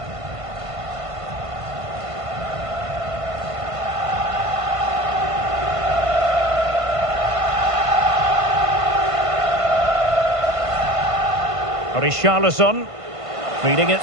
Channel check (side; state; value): left; late; 1.5 ms